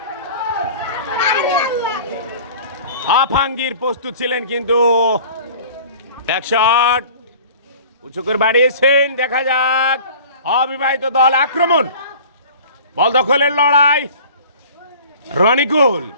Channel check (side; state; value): both; inverted; correlation -0.44